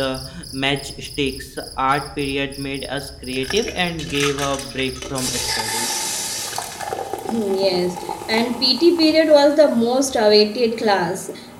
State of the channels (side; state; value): both; identical; correlation 1.00